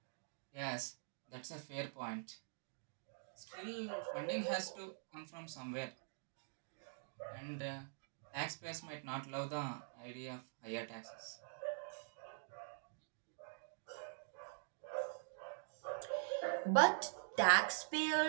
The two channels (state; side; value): silent; left; digital silence